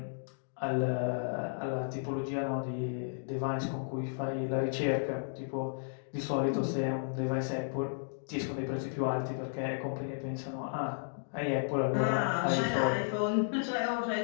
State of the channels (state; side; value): silent; right; digital silence